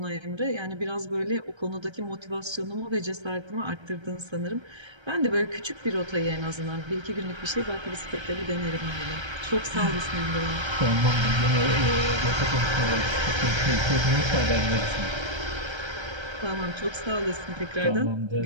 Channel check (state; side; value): late; left; 1.3 ms